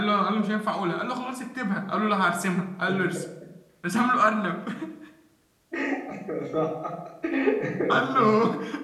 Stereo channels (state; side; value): identical; both; correlation 1.00